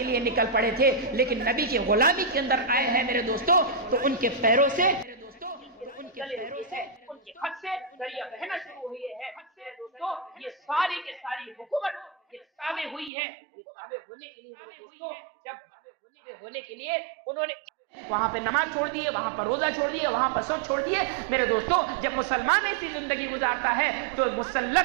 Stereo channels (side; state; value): left; drops out; at 13.1 s